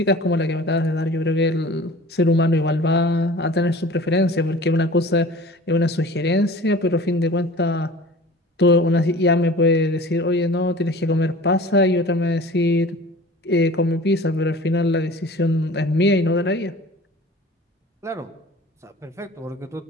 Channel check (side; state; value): both; normal; correlation 0.43